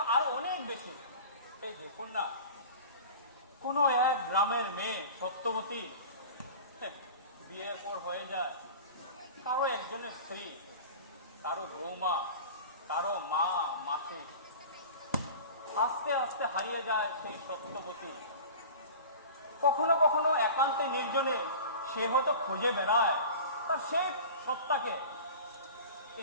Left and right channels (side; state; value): both; inverted; correlation -0.37